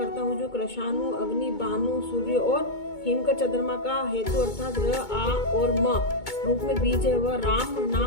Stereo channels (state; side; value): late; right; 2.2 ms